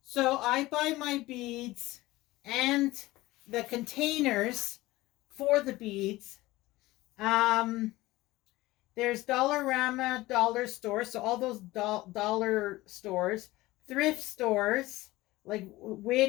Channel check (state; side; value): quieter; right; 18.7 dB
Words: So I buy my beads and the containers for the beads. There's Dollarama, dollar stores, so all those dollar stores, thrift stores like